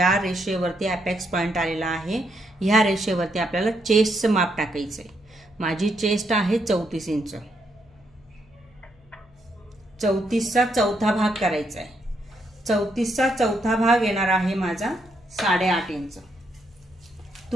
रेषेवरती अपेक्स पॉइंट आलेला आहे ह्या रेषेवरती आपल्याला चेस्टचं माप टाकायचंय. माझी चेस्ट आहे 34 इंच. 34चा चौथा भाग करायचा आहे. 34चा चौथा भाग येणार आहे माझा 8.5 इंच.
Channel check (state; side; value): noise; left; hum, 29 dB below the sound